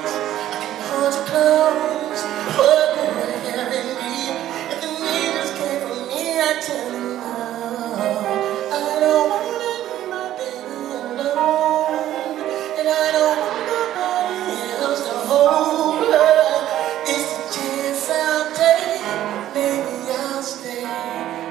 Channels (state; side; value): quieter; left; 12.7 dB